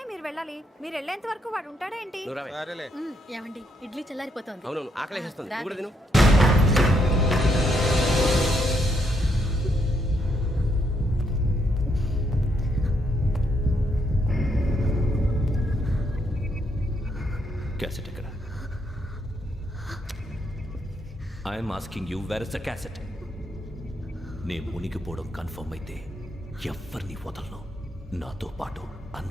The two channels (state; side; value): normal; both; correlation 0.75